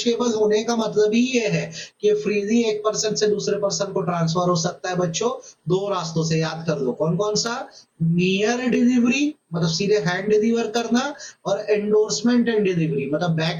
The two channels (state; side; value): identical; both; correlation 1.00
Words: होने का मतलब ही ये है कि फ्रीली एक पर्सन से दूसरे पर्सन को ट्रांसफर हो सकता है। बच्चों दो रास्तों से, याद कर लो कौन कौन सा, नियर डिलीवरी मतलब सीधे हैंड डिलीवर करना, और एंडोर्समेंट एंड डिलीवरी मतलब